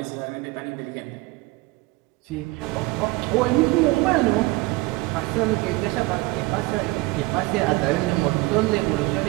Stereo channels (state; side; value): quieter; left; 21.8 dB